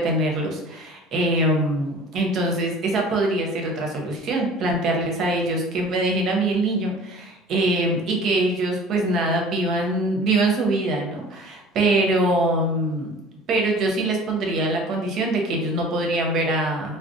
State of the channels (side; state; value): both; normal; correlation 0.45